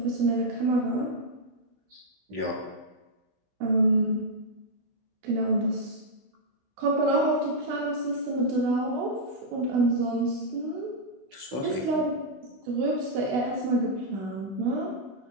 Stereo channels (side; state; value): left; late; 15 ms